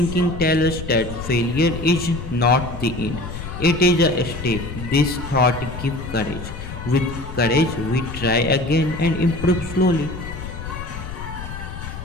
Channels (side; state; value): left; noise; rumble, 9 dB below the sound